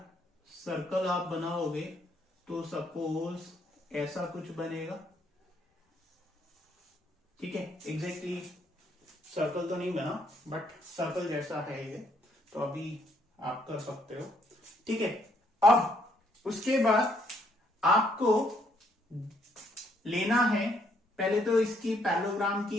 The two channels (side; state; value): both; normal; correlation 0.70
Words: सर्कल आप बनाओगे तो सपोज ऐसा कुछ बनेगा। ठीक है, एग्जैक्टली सर्कल तो नहीं बना, बट सर्कल जैसा है ये, तो अभी आप कर सकते हो। ठीक है, अब उसके बाद आपको लेना है, पहले तो इसकी पैरेललोग्राम